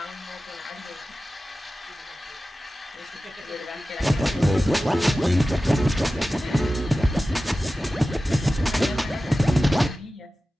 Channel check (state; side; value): normal; both; correlation 0.95